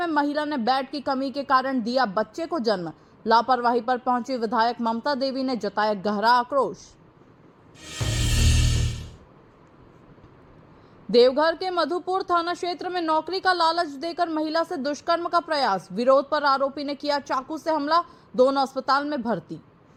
महिला ने बेड की कमी के कारण दिया बच्चे को जन्म। लापरवाही पर पहुंची विधायक ममता देवी ने जताया गहरा आक्रोश। देवघर के मधुपुर थाना क्षेत्र में नौकरी का लालच देकर महिला से दुष्कर्म का प्रयास, विरोध पर आरोपी ने किया चाकू से हमला, दोनों अस्पताल में भर्ती।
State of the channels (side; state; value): both; identical; correlation 1.00